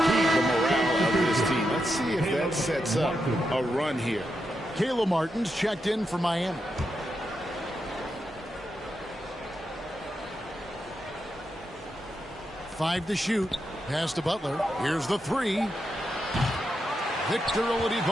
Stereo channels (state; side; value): normal; both; correlation 0.85